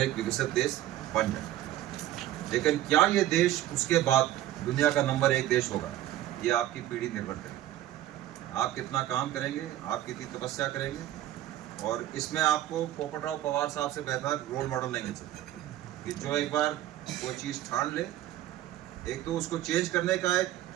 एक विकसित देश बन जाए। लेकिन क्या ये देश उसके बाद दुनिया का नंबर 1 देश होगा, ये आपकी पीढ़ी निर्भर करेगी। आप कितना काम करेंगे, आप कितनी तपस्या करेंगे, और इसमें आपको पोपटराव पवार साहब से बेहतर रोल मॉडल नहीं मिल सकते कि जो एक बार कोई चीज़ ठान ले, एक तो उसको चेंज करने का एक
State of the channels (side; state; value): left; quieter; 13.6 dB